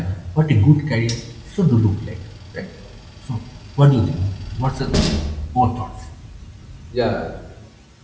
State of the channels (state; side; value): identical; both; correlation 1.00